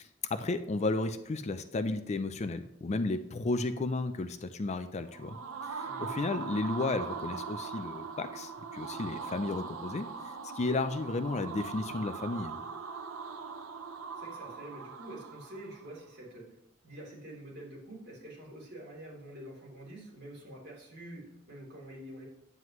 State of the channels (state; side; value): normal; both; correlation 0.45